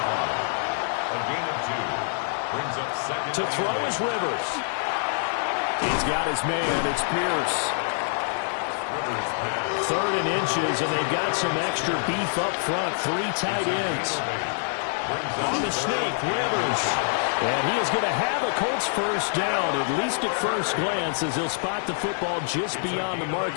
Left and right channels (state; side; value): silent; right; digital silence